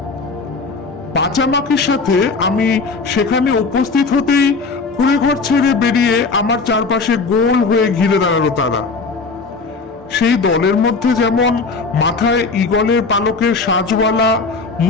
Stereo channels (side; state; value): right; quieter; 4.2 dB